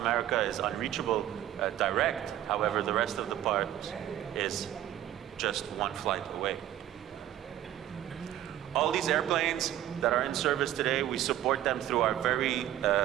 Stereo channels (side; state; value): left; quieter; 12.3 dB